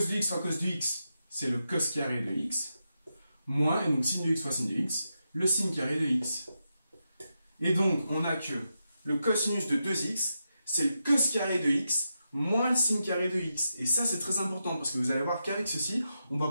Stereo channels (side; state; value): both; inverted; correlation -0.87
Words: x fois cos de x, c'est le cos carré de x. Moins, et donc signe de x fois signe de x, le signe carré de x. Et donc, on a que le cosinus de 2x, c'est le cos carré de x, moins le signe carré de x. Et ça, c'est très important, parce que vous allez voir qu'avec ceci, on va